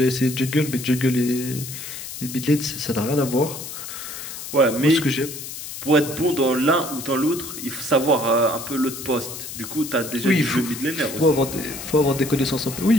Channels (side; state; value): left; noise; hiss, 9 dB below the sound